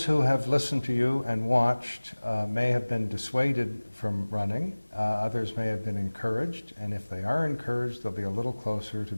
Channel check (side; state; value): both; inverted; correlation -1.00